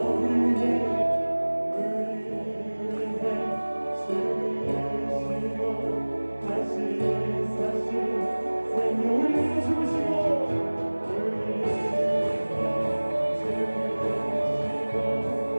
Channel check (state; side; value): inverted; both; correlation -1.00